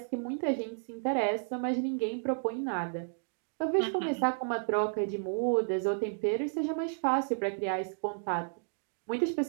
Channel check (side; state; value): left; silent; digital silence